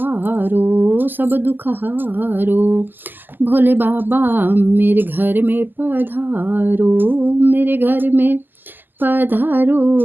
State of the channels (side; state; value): left; late; 0.090 ms